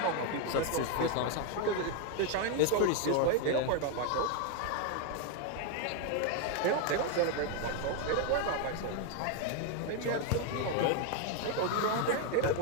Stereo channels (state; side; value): different; both; correlation 0.01